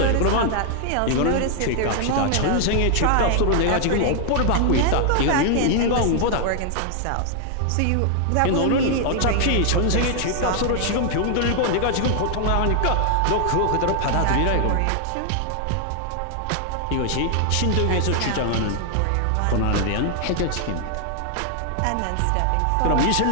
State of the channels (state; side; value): different; both; correlation 0.00